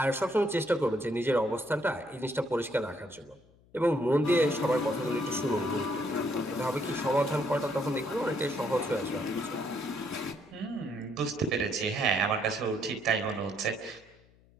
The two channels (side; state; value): left; noise; hum, 29 dB below the sound